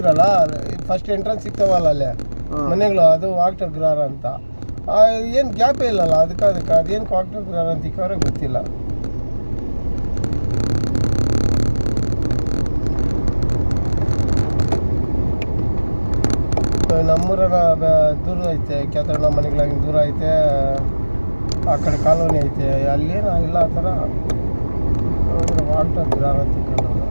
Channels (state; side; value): inverted; both; correlation -1.00